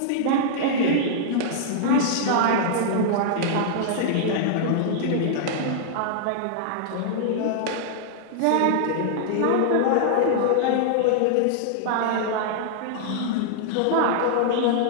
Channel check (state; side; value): different; both; correlation -0.01